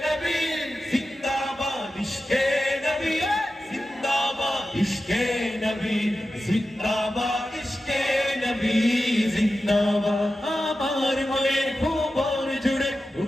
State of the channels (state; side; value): normal; both; correlation 0.93